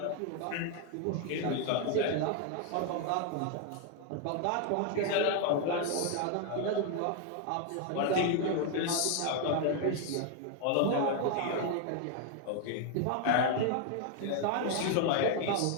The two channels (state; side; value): different; both; correlation 0.01